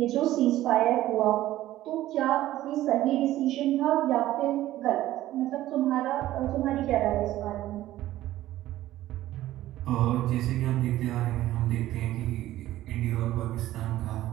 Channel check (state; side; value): quieter; left; 14.7 dB